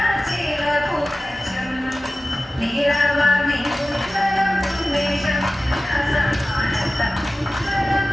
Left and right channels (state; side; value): normal; both; correlation 0.95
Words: ചില പുകച്ചും നീളവാമി ഉജ്വലം ഉന്മേഷം സമാനത്തം ഉജ്വലം